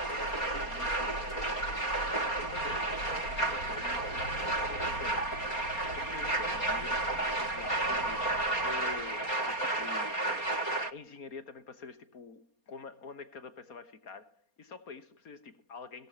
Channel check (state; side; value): late; right; 4.3 ms